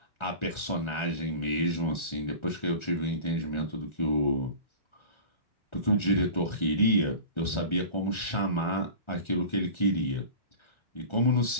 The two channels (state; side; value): late; right; 1.4 ms